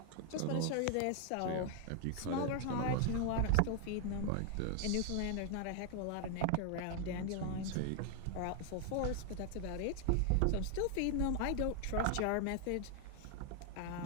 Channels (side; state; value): both; different; correlation 0.00